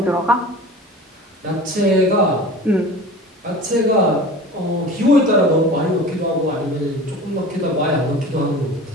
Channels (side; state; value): both; normal; correlation 0.38